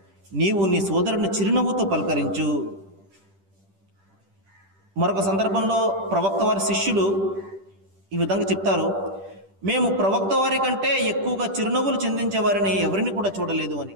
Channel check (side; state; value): left; late; 10 ms